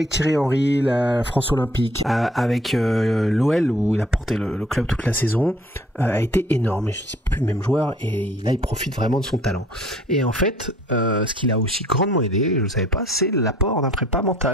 Thierry Henry, la France Olympique, avec l'OL, où il a porté le club toute la saison, a été énorme. Et je ne suis plus le même joueur, et là, il profite vraiment de son talent. Et en fait, ce qui l'a aussi grandement aidé, je ne savais pas, c'est l'apport d'un prépa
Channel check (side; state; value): both; normal; correlation 0.57